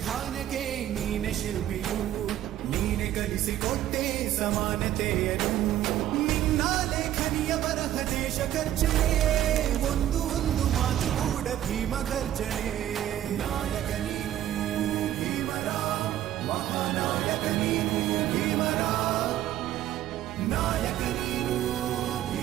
ನೀನೆ ಶಿಲ್ಪಿಯು, ನೀನೆ ಕಲಿಸಿಕೊಟ್ಟೆ ಸಮಾನತೆಯನು. ನಿನ್ನ ಲೇಖನಿಯ ಬರಹ ದೇಶ ಖರ್ಚನೆ, ಒಂದು ಒಂದು ಮಾತು ಕೂಡ ಭೀಮ ಗರ್ಜನೆ. ನಾಯಕ ನೀನು ಭೀಮರ, ಮಹಾನಾಯಕ ನೀನು ಭೀಮರ, ನಾಯಕ ನೀನು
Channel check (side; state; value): left; quieter; 12.3 dB